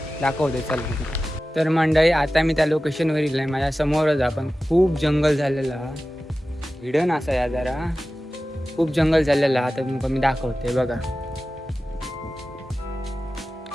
दाखवते चल. तर मंडळी आता मी त्या लोकेशनवर येईल आहे. माझ्या समोरच आपण खूप जंगल झालेला हिडन असा या जरा खूप जंगल झालेला. आता तुमका मी दाखवते बघा.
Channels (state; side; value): normal; both; correlation 0.95